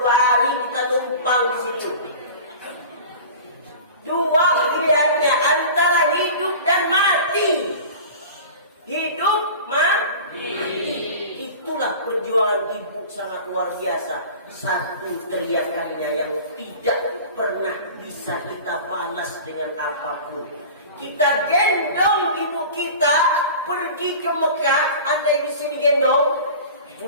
hari kita numpang di situ. Dua pilihannya antara hidup dan mati. Hidup mati. Itulah perjuangan ibu sangat luar biasa. Satu teriakannya yang tidak pernah bisa kita balas dengan apapun. Kita gendong ibu kita pergi ke Mekah. Andai di sini gendong,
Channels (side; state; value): both; inverted; correlation -0.37